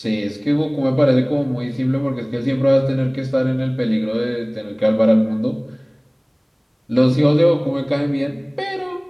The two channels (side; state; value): both; identical; correlation 1.00